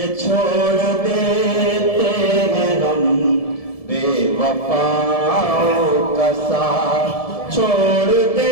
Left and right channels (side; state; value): right; late; 1.7 ms